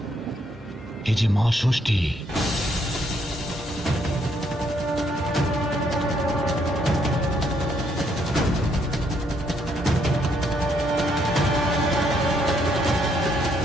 এই যে মা ষষ্ঠী,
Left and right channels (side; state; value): both; normal; correlation 0.72